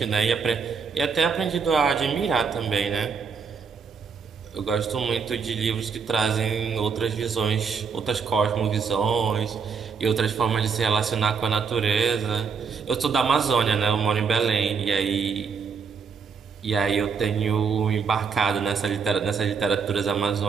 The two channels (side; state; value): left; quieter; 5.8 dB